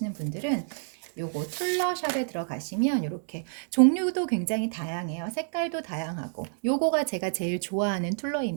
분들은 요거 툴러샵에 들어가시면 이렇게 종류도 굉장히 다양해요. 색깔도 다양하고, 요거가 제가 제일 좋아하는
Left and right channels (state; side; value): silent; left; digital silence